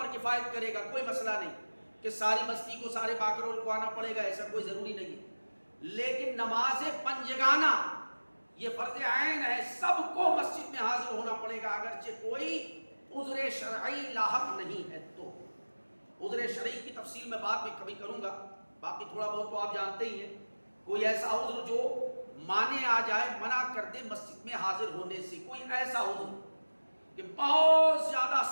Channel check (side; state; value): both; inverted; correlation -1.00